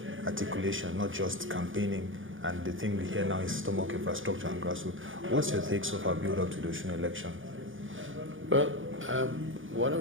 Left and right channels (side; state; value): left; late; 0.58 ms